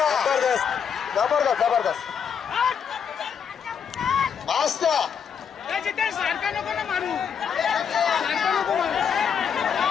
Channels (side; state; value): right; quieter; 7.3 dB